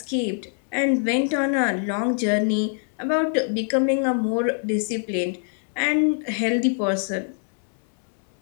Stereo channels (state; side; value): silent; right; 57 dB below the other